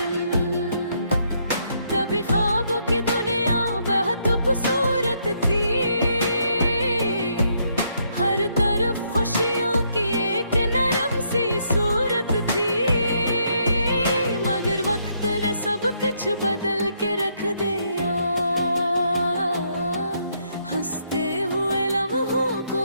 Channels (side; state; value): both; inverted; correlation -0.73